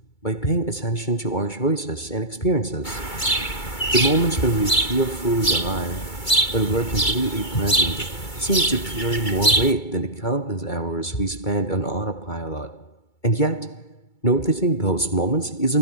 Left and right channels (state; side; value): late; right; 2.3 ms